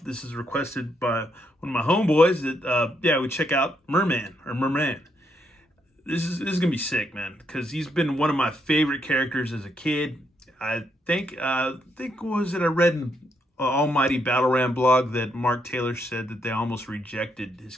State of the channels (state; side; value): normal; both; correlation 0.76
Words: this is requested by one of my homeboys that, we check out Merman, or Merman. This is going to be sick, man, because he's been one of my favorite characters as a kid. I think I read in Almighty Battle Ram blog that Mark Taylor said that they almost rejected his